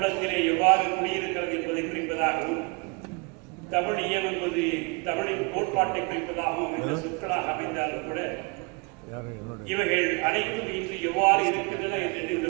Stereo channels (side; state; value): left; quieter; 30.9 dB